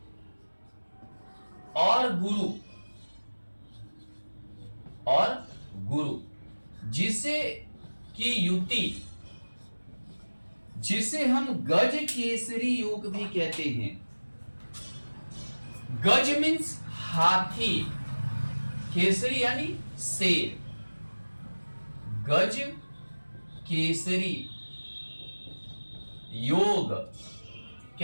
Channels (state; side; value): inverted; both; correlation -1.00